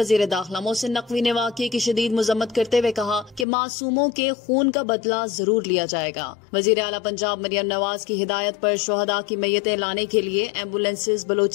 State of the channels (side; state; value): right; drops out; at 3.5 s